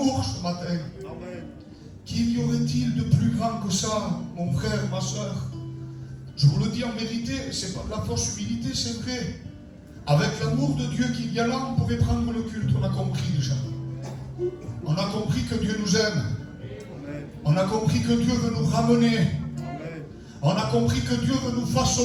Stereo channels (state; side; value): identical; both; correlation 1.00